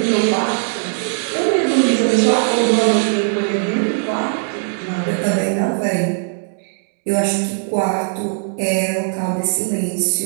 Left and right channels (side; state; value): left; silent; digital silence